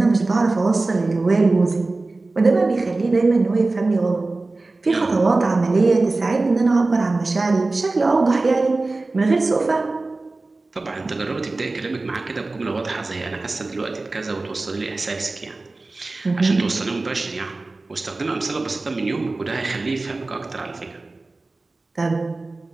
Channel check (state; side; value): quieter; left; 3.3 dB